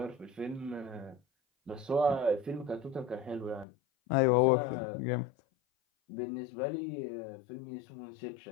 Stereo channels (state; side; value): drops out; right; at 3.7 s